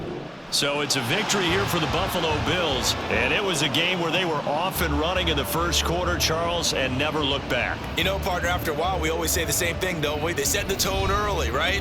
So it's a victory here for the Buffalo Bills, and it was a game where they were off and running in the 1st quarter, Charles, and never looked back. You know, partner, after a while, we always say the same thing, don't we? They set the tone early,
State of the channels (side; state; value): both; identical; correlation 1.00